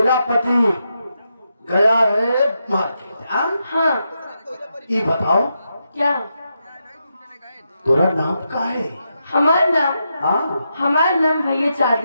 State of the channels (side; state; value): both; inverted; correlation -0.84